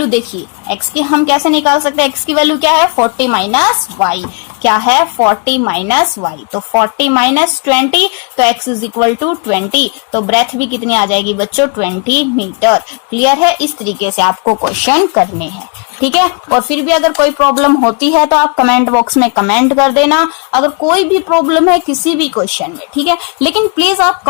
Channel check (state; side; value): quieter; right; 35.7 dB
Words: देखिए, x की हम कैसे निकाल सकते हैं, x की वैल्यू क्या है 40 माइनस वाई, क्या है 40 माइनस वाई, तो 40 माइनस 20, तो x इज इक्वल टू 20, तो ब्रेथ भी कितनी आ जाएगी बच्चों, 20 मीटर। क्लियर है, इस तरीके से आपको क्वेश्चन करने हैं। ठीक है, और फिर भी अगर कोई प्रॉब्लम होती है तो आप कमेंट बॉक्स में कमेंट कर देना, अगर कोई भी प्रॉब्लम है किसी भी क्वेश्चन में। ठीक है, लेकिन प्लीज आप